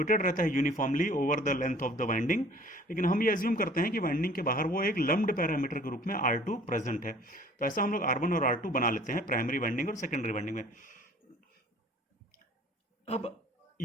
रहता है uniformly over the length of the winding. लेकिन हम ये अज्यूम करते हैं कि वाइंडिंग के बाहर वो एक लम्ब्ड पैरामीटर के रूप में R2 प्रेजेंट है। तो ऐसा हम लोग R1 और R2 बना लेते हैं प्राइमरी वाइंडिंग और सेकेंडरी वाइंडिंग में। अब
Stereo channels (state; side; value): normal; both; correlation 0.50